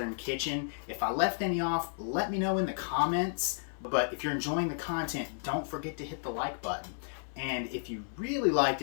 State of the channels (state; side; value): silent; right; digital silence